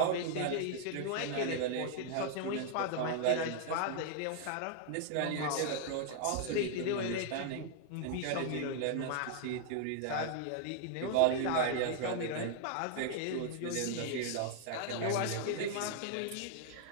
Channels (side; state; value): both; different; correlation 0.00